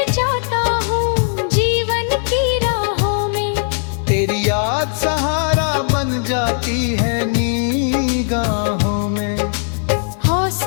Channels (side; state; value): right; silent; 61 dB below the other